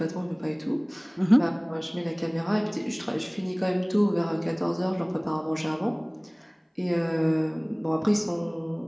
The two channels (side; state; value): both; identical; correlation 1.00